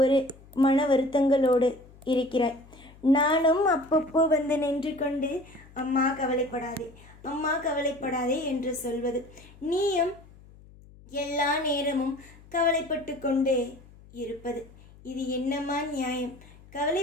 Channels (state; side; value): noise; left; hum, 23 dB below the sound